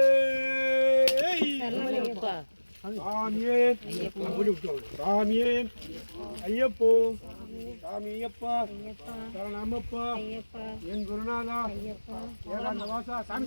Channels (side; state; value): both; inverted; correlation -1.00